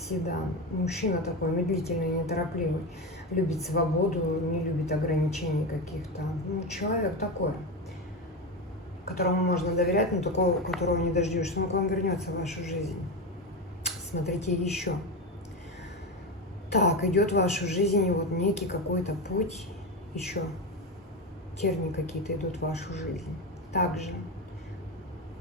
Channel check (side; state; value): both; normal; correlation 0.17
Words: Мужчина такой медлительный, неторопливый. Любит свободу, не любит ограничений каких-то. Ну, человек такой, которому можно доверять, но такого, которого не дождешься. Он к вам вернется в вашу жизнь. Смотрите еще. Так, идет в вашу жизнь вот некий какой-то путь, еще тернии какие-то идут в вашу жизнь. Также,